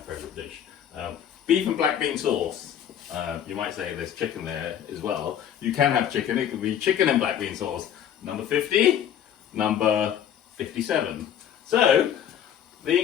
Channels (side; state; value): right; quieter; 9.6 dB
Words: dish. Beef and black bean sauce. You might say there's chicken there as well. You can have chicken, it could be chicken and black bean sauce. Number 50, number 57. So, the